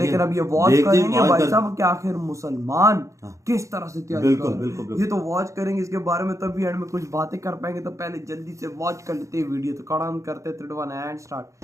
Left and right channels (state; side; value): late; left; 0.15 ms